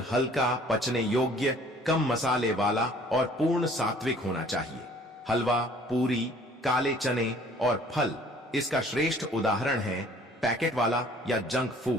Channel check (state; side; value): normal; both; correlation 0.54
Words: हल्का, पचने योग्य, कम मसाले वाला और पूर्ण सात्विक होना चाहिए। हलवा, पूरी, काले चने और फल इसका श्रेष्ठ उदाहरण है। पैकेट वाला या जंक